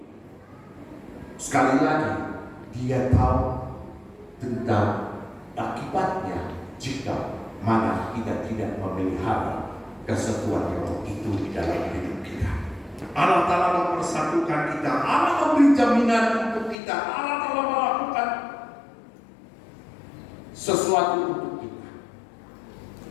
sekali lagi dia tahu tentang akibatnya jika mana kita tidak memelihara kesatuan roh itu di dalam hidup kita. Allah Ta'ala mempersatukan kita, Allah memberi jaminan untuk kita, Allah Ta'ala melakukan sesuatu untuk kita.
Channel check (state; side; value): drops out; right; at 16.8 s